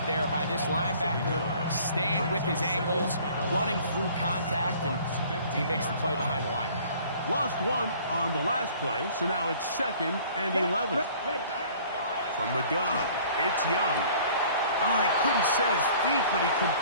there by this linebacker, staying with his angles, running through contact, and he makes the play behind the line. Lost one on the last play, so now it's 2nd and 11. From the gun, it's Young. Oh, he couldn't set his feet, but he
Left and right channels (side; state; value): both; inverted; correlation -0.52